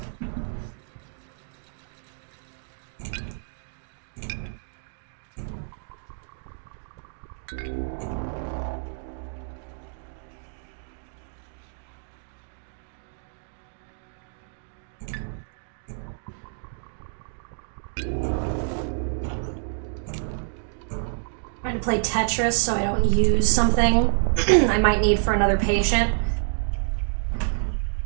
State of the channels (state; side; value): silent; left; digital silence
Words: Trying to play Tetris so I don't use something I might need for another patient. I